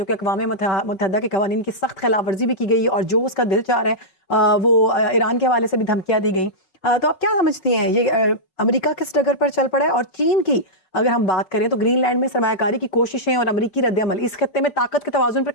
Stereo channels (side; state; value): right; late; 5.2 ms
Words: कि अक़वाम मुत्तहदा के कवानीन की सख्त खिलाफ वर्जी भी की गई और जो उसका दिल चाह रहा है वो ईरान के हवाले से भी धमकियाँ दी गई। तो आप क्या समझती हैं ये अमेरिका किस डगर पर चल पड़ा है? और चीन की अगर हम बात करें तो ग्रीनलैंड में सरमायाकारी की कोशिशें और अमरीकी रद्द-ए-अमल इस खत्ते में ताकत के तवाज़ुन पर